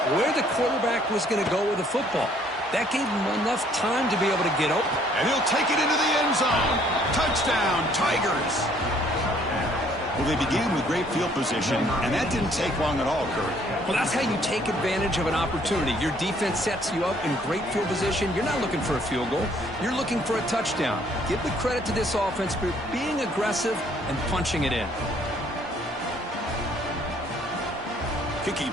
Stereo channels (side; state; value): both; normal; correlation 0.62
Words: where the quarterback was going to go with the football. That gave him enough time to be able to get open. And he'll take it into the end zone. Touchdown, Tigers. Well, they began with great field position, and that didn't take long at all, Kurt. Well, that's how you take advantage of an opportunity. Your defense sets you up in great field position. You're not looking for a field goal. You're looking for a touchdown. Give the credit to this offense for being aggressive and punching it in. Kicking